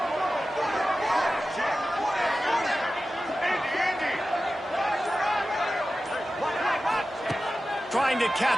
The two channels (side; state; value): both; normal; correlation 0.94